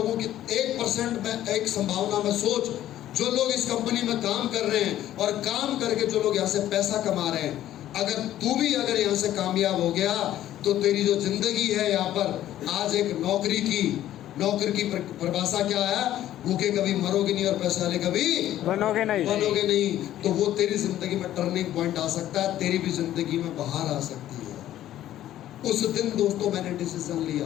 की 1% में एक संभावना में सोच, जो लोग इस कंपनी में काम कर रहे हैं और काम करके जो लोग यहाँ से पैसा कमा रहे हैं, अगर तू भी अगर यहाँ से कामयाब हो गया तो तेरी जो जिंदगी है यहाँ पर आज एक नौकरी की परिभाषा क्या है, भूखे कभी मरोगे नहीं और पैसे वाले कभी बनोगे नहीं। तो वो तेरी जिंदगी में टर्निंग पॉइंट आ सकता है, तेरी भी जिंदगी में बाहर आ सकती है। उस दिन दोस्तों मैंने डिसीजन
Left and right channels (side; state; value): right; quieter; 12.8 dB